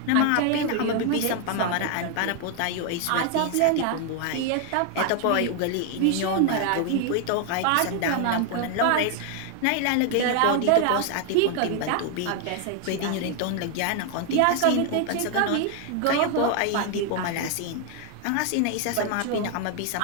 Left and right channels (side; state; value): both; different; correlation 0.00